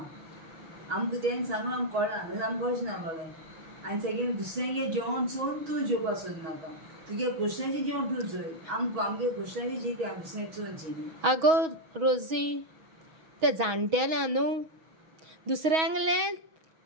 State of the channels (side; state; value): left; late; 6.2 ms